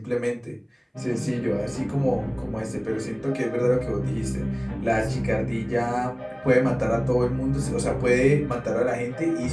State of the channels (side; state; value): both; identical; correlation 1.00